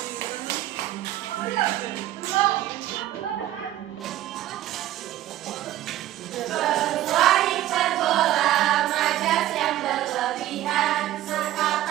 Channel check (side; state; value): left; quieter; 14.0 dB